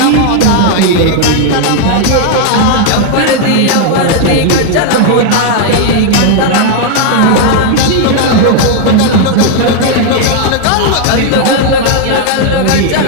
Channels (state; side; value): different; both; correlation 0.00